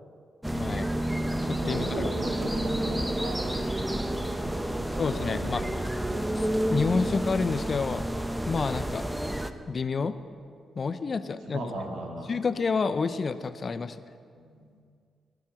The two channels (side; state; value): both; normal; correlation 0.92